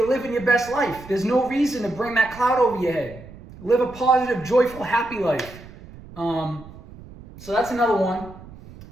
living your best life, there's no reason to bring that cloud over your head. Live a positive, joyful, happy life. So that's another one.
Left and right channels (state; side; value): noise; right; rumble, 18 dB below the sound